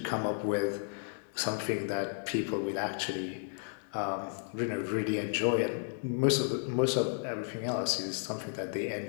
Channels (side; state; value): right; silent; digital silence